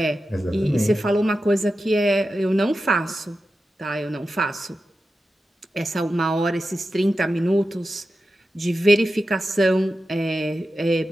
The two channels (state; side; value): normal; both; correlation 0.91